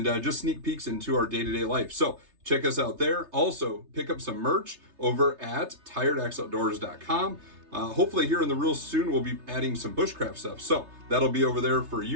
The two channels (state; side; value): late; left; 3.3 ms